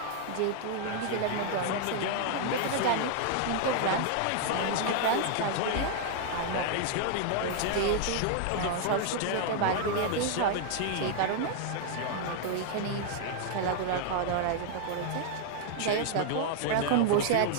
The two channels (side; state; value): both; different; correlation 0.00